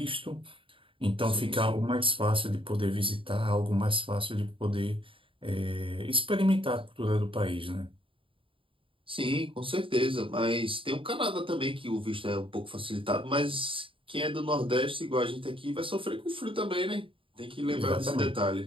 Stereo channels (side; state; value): left; late; 0.25 ms